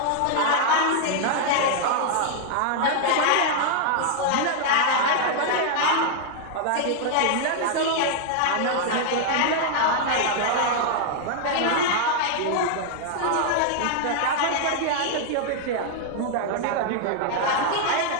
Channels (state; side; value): different; both; correlation -0.01